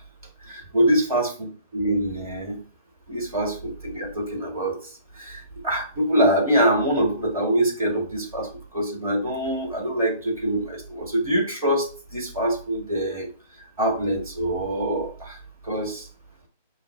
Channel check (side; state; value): both; inverted; correlation -0.54